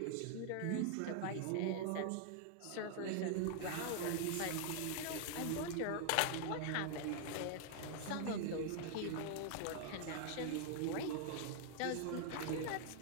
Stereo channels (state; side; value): different; both; correlation 0.00